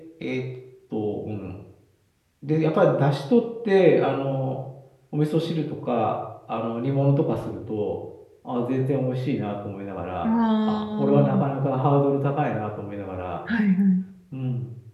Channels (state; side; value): identical; both; correlation 1.00